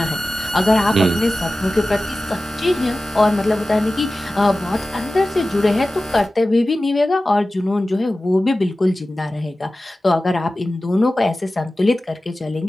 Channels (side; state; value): both; normal; correlation 0.96